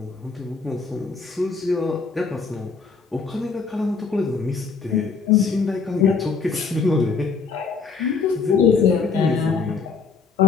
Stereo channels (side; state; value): right; quieter; 5.0 dB